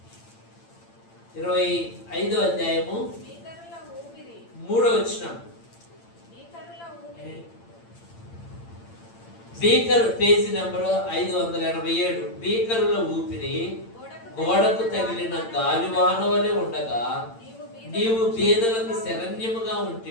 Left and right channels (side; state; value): right; late; 8.8 ms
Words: 25వ అధ్యాయము 3వ వచనం. Beaker page number 587. బీకరుల ఊపిరి గోడకు తగిలిన గాలివాన వలె ఉండగా నీవు బీదలకు శరణ్యముగా